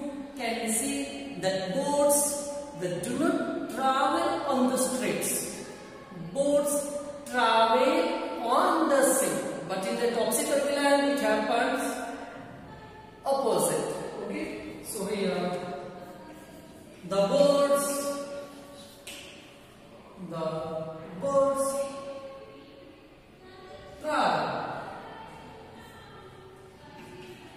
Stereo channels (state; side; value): identical; both; correlation 1.00